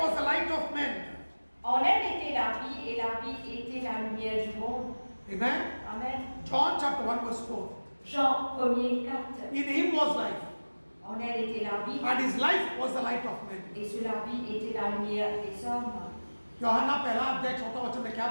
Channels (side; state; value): both; inverted; correlation -1.00